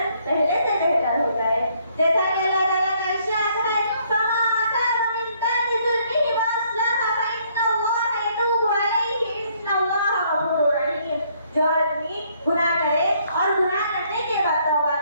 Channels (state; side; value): inverted; both; correlation -0.67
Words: पहले से बेहतर हो जाए। जैसा कि अल्लाह ताला का इरशाद है, फमन ताबा मिन बादि ज़ुल्मिही व अस्लह फइन्नल्लाह यतूबु अलैहि, इन्नल्लाह गफूरुर रहीम। जो आदमी गुनाह करे और गुनाह करने के बाद तौबा